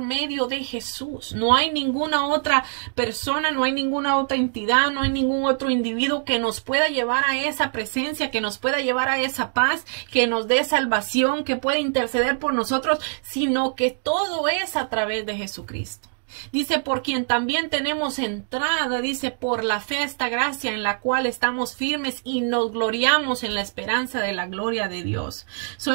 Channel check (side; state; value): left; silent; digital silence